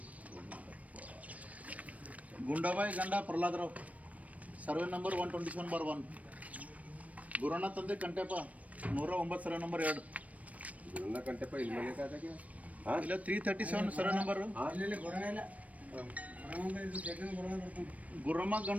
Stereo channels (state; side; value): late; left; 0.068 ms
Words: ಗುಂಡಾಬಾಯಿ ಗಂಡ ಪ್ರಹ್ಲಾದರಾವ್, ಸರ್ವೆ ನಂಬರ್ 127/1. ಗುರಣ್ಣ ತಂದೆ ಕಂಟೆಪ್ಪ 109 ಸರ್ವೆ ನಂಬರ್ 2. ಗುರಣ್ಣ ಕಂಟೆಪ್ಪ ಇಲ್ಲಿ ಮನೆ ಕಾದಾಗೆ ಇಲ್ಲ 337 ಸರ್ವೆ ನಂಬರ್. ಗುರಮ್ಮ